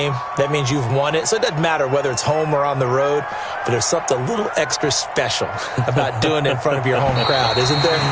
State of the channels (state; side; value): identical; both; correlation 1.00